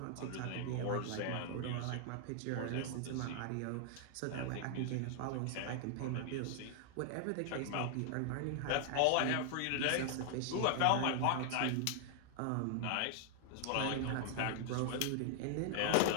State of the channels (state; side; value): different; both; correlation 0.00